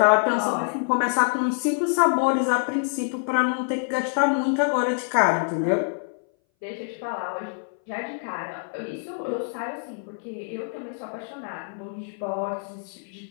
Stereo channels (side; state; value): right; silent; 59 dB below the other